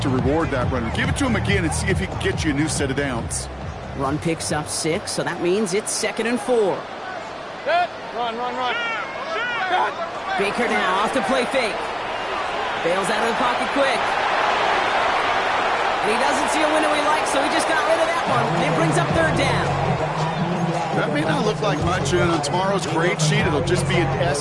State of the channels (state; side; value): identical; both; correlation 1.00